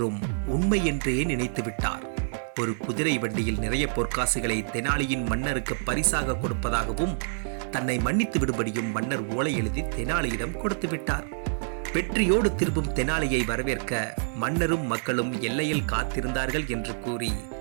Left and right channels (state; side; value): silent; left; digital silence